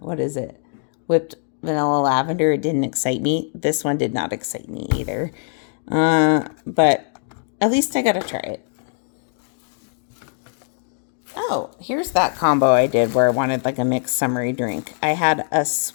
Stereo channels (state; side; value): silent; right; digital silence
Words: whipped vanilla lavender. It didn't excite me. This one did not excite me either. But at least I got to try it. Oh, here's that combo I did where I wanted like a mixed summery drink. I had a